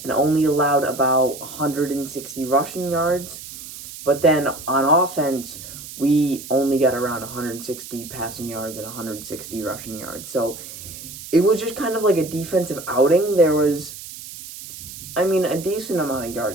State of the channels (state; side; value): noise; right; hiss, 13 dB below the sound